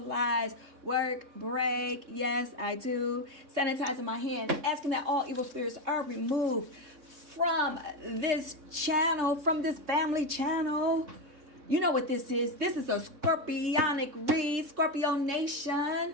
work break. Yes, I do. Sanitizing my hands, asking that all evil spirits are removed from this channel, from this family channel. You know what this is. This is a Scorpionic read, Scorpio Nation.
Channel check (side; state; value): left; late; 3.6 ms